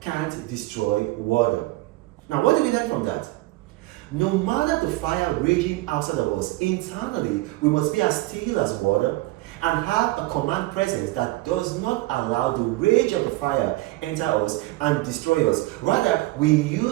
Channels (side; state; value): left; quieter; 19.5 dB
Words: destroy water. Now, what do we learn from that? No matter the fire raging outside of us, internally we must be as still as water and have a command presence that does not allow the rage of the fire enter us and destroy us. Rather, we